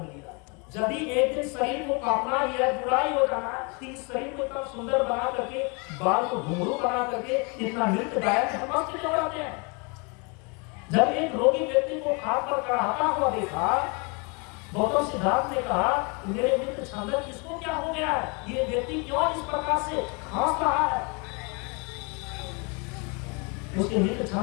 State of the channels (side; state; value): right; quieter; 32.1 dB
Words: लिया। यदि एक दिन शरीर को कांपना ही है, बुराई हो जाना, इस शरीर को इतना सुंदर बना करके, बाल को घुंघरू बना करके इतना नृत्य गायक हम क्यों कराते हैं? जब एक रोगी व्यक्ति को खाट पर चढ़ाता हुआ देखा, गौतम सिद्धार्थ ने कहा, मेरे मित्र छंदक, इसको क्या हो गया है? ये व्यक्ति क्यों इस प्रकार से खांस रहा है? उसके मित्र